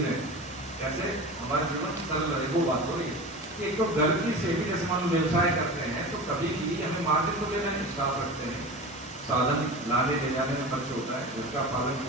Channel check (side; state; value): both; normal; correlation 0.31